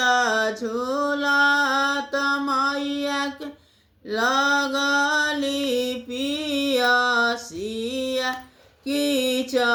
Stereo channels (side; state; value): both; identical; correlation 1.00